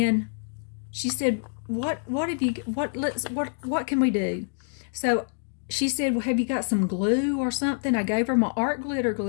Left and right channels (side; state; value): right; silent; digital silence